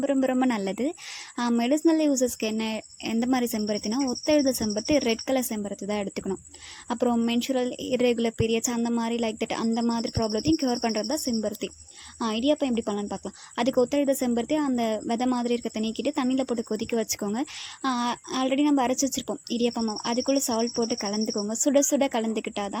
ரொம்ப ரொம்ப நல்லது. மெடிசினல் யூசஸ்க்கு எந்த மாதிரி செம்பருத்தினா, ஒத்தெழுத செம்பருத்தி, ரெட் கலர் செம்பருத்தி தான் எடுத்துக்கணும். அப்புறம் மென்சுரல் இர்ரெகுலர் பீரியட்ஸ் அந்த மாதிரி அந்த மாதிரி ப்ராப்ளத்தையும் க்யூர் பண்ணுறது தான் செம்பருத்தி. இடியாப்பம் எப்படி பண்ணலான்னு பார்க்கலாம். அதுக்கு ஒத்தெழுத செம்பருத்தி அந்த விதை மாதிரி இருக்க நீக்கிட்டு தண்ணியில் போட்டு கொதிக்க வச்சுக்கோங்க. ஆல்ரெடி நம்ம அரைச்சி வச்சுருப்போம் இடியாப்பம் மாவு, அதுக்குள்ளே சால்ட் போட்டு கலந்துக்கோங்க. சுட சுட கலந்துக்கிட்டால்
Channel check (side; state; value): both; identical; correlation 1.00